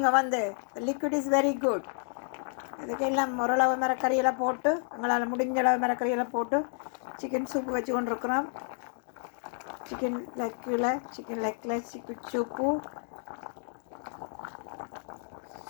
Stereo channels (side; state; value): right; silent; 57 dB below the other